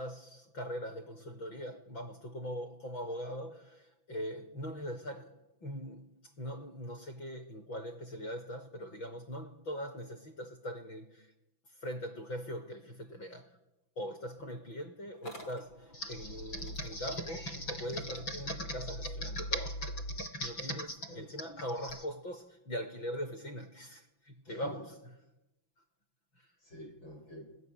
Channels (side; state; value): right; late; 6.0 ms